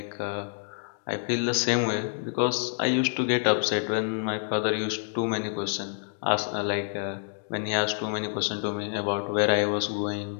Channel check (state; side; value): silent; right; digital silence